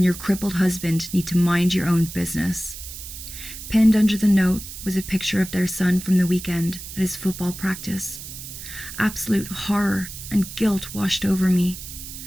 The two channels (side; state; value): right; noise; hiss, 11 dB below the sound